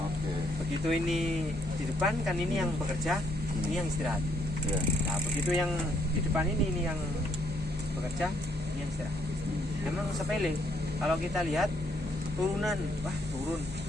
Begitu ini di depan kan ini yang bekerja, ini yang istirahat. Ya. Nah, begitu yang di depan ini yang bekerja, ini yang istirahat. Memang sepele. Kalau kita lihat turunan, wah turun.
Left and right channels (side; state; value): both; normal; correlation 0.71